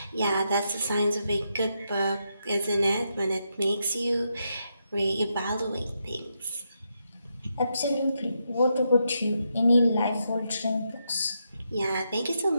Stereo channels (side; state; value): both; inverted; correlation -0.83